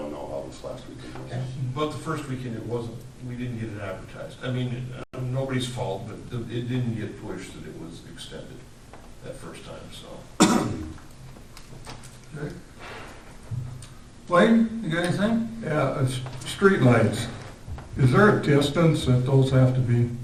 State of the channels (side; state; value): both; identical; correlation 1.00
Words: know how this last weekend was. But the first weekend, it wasn't, we didn't get it advertised. I mean, nobody's fault, but it didn't get pushed that it was extended that first time, so. Okay. Wayne, you got anything? Yeah, street lights. Is there a distance that those have to be